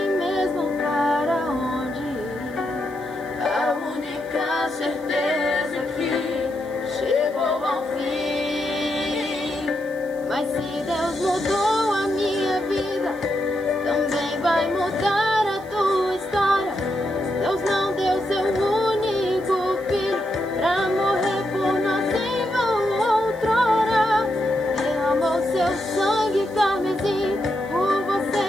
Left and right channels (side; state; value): right; noise; hiss, 26 dB below the sound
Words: mesmo para onde ir. A única certeza é que chegou ao fim. Mas se Deus mudou a minha vida, também vai mudar a tua história. Deus não deu seu único filho pra morrer por nós em vão outrora. Derramou seu sangue carmesim por você